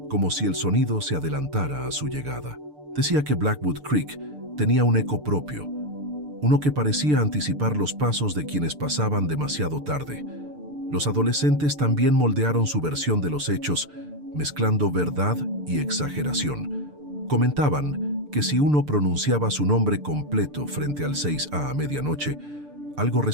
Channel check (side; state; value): left; late; 6.8 ms